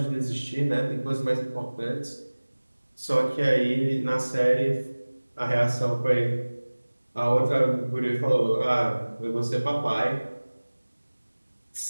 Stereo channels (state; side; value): inverted; both; correlation -1.00